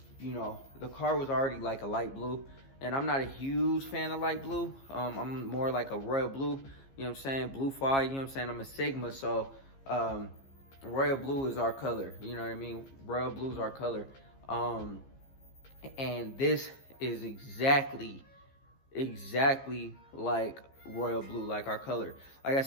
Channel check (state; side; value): late; right; 15 ms